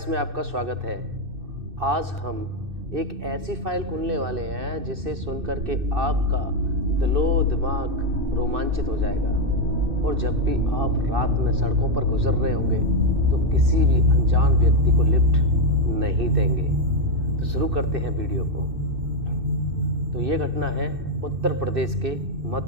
में आपका स्वागत है। आज हम एक ऐसी फाइल खोलने वाले हैं जिसे सुनकर के आपका दिलो दिमाग रोमांचित हो जाएगा। और जब भी आप रात में सड़कों पर गुजर रहे होंगे तो किसी भी अनजान व्यक्ति को लिफ्ट नहीं देंगे। तो शुरू करते हैं वीडियो को। तो ये घटना है उत्तर प्रदेश के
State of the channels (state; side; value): late; left; 2.6 ms